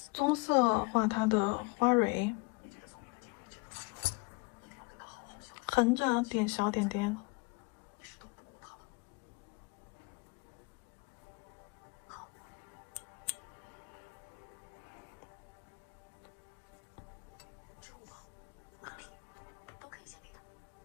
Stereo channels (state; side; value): quieter; right; 28.6 dB